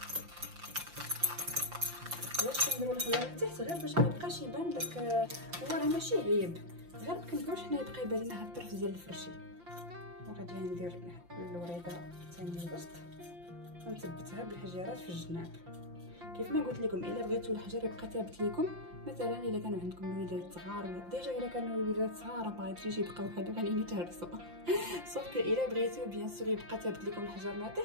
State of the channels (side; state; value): left; late; 5.8 ms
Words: علاش كنديروا الحجر لتحت؟ غير باش ما يبقاش يبان داك، هو راه ماشي عيب، غير ما كنبغيوش حنا يبقى يبان لنا هاد الطرف ديال الفرشي. وغادي ندير الوريده الثانيه الوسط ونثبتها بالحجيرات في الجناب. كيف ما قلت لكم الا بغيتوا الحجر يبقى ثابت لكم، مثلا الا كانوا عندكم الوليدات صغار ولا ديجا الا كانوا الوليدات صغار ما غاديش يبقاو هادو غاديين يتهرسوا. صافي الا بغيتو بيان سور يبقى ثابت لكم الحجر ما